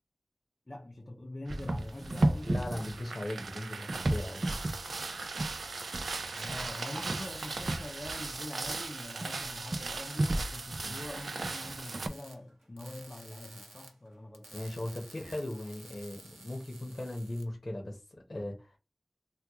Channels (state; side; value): normal; both; correlation 0.96